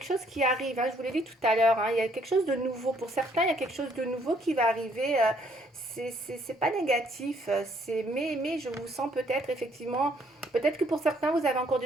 chose qui arrive, hein, je vous l'ai dit tout à l'heure, hein, il y a quelque chose de nouveau. Pour certains, il y a quelque chose de nouveau qui va arriver. C'est pas négatif, mais je vous sens peut-être, effectivement... Peut-être que pour certains, vous avez encore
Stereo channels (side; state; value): both; normal; correlation 0.66